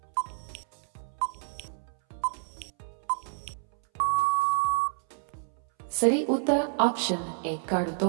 ಸರಿ ಉತ್ತರ ಆಪ್ಷನ್ ಎ ಕಾಡು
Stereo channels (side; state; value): left; silent; 58 dB below the other